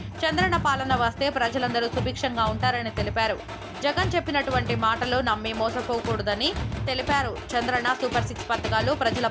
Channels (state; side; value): identical; both; correlation 1.00